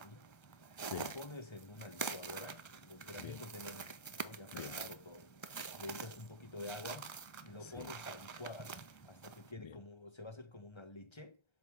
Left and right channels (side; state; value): right; late; 1.3 ms